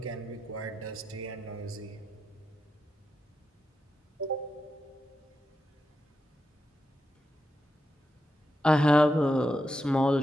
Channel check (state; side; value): normal; both; correlation 0.87